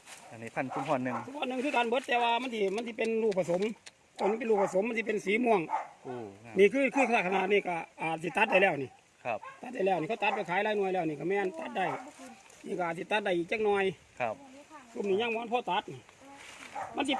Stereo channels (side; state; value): both; identical; correlation 1.00